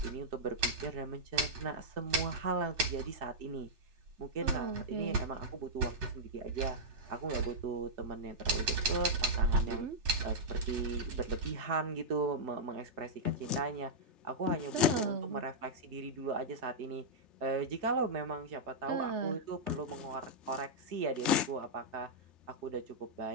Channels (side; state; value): left; late; 3.3 ms